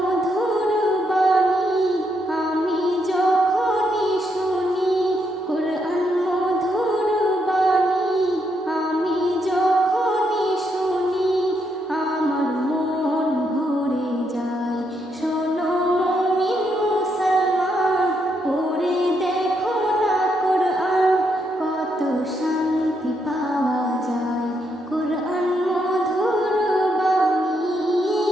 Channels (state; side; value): normal; both; correlation 0.78